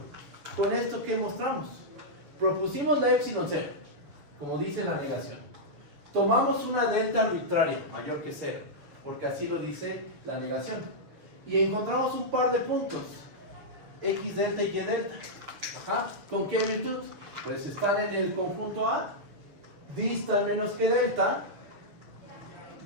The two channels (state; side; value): late; left; 6.9 ms